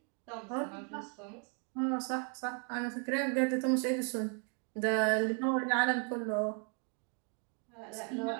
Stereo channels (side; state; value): left; quieter; 38.0 dB